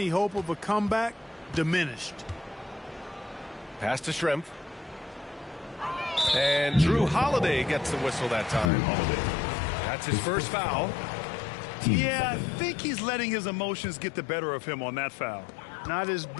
hope of a comeback diminished. Pass to Shrimp. And Drew Holiday gets the whistle that time. That's his first foul. Yeah, I think he's letting his emotions get the better of him on that foul. Not his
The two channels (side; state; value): right; drops out; at 8.7 s